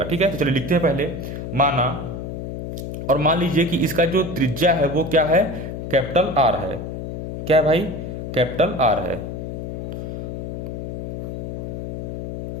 ठीक है। तो चलिए लिखते हैं पहले, माना, और मान लीजिए कि इसका जो त्रिज्या है वो क्या है, कैपिटल R है, क्या है भाई, कैपिटल R है।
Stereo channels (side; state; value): left; noise; hum, 6 dB below the sound